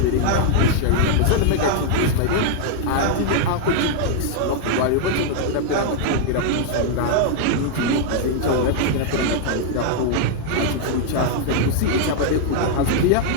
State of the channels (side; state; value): both; different; correlation -0.01